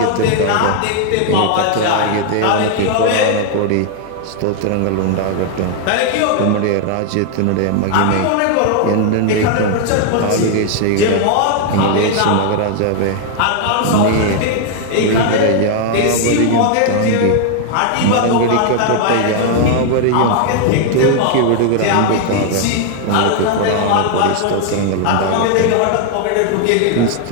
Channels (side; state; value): both; different; correlation 0.00